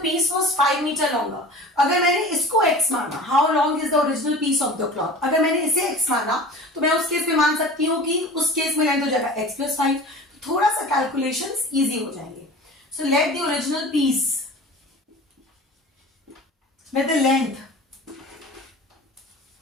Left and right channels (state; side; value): normal; both; correlation 0.39